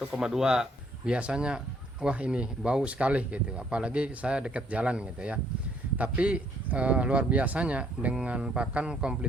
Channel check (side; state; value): both; normal; correlation 0.66